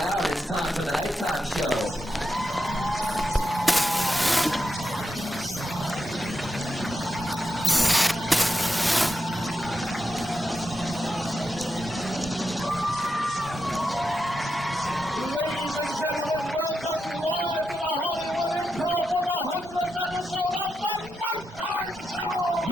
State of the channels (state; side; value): normal; both; correlation 0.87